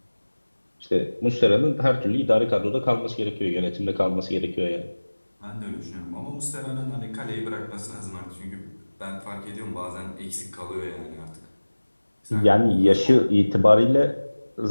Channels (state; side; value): inverted; both; correlation -1.00